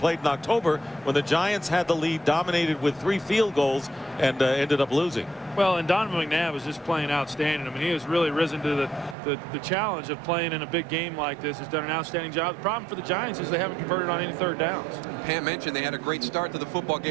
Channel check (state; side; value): drops out; left; at 9.2 s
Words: in October when the Giants had the lead, dominated with 3 field goals, and ended up losing. Well, and Donovan McNabb is just playing outstanding. I mean, he has really risen to the challenge of playing in a big game like this. He's done an outstanding job. The problem for the Giants is they haven't converted on any third downs. Pam mentioned they had a great start to the football